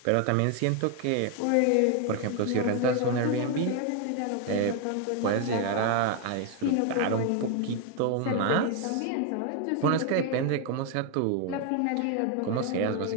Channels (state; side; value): different; both; correlation 0.01